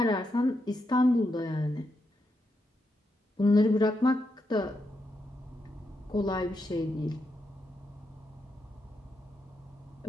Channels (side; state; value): both; normal; correlation 0.83